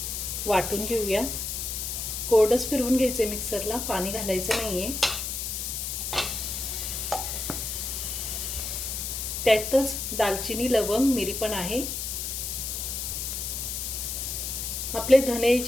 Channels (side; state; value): left; noise; hiss, 3 dB below the sound